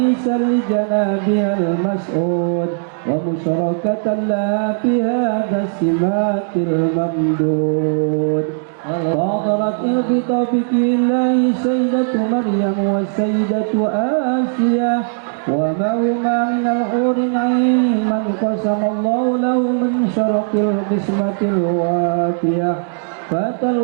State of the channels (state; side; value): silent; left; digital silence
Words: لجنابها المسعود ومشاركة لها في هذا السمات الممدود فاضرت بتوفيق الله سيدة مريم والسيدة آسيا وما هما من الحور العين من قسم الله له من شرق القسمة الوافية فأتى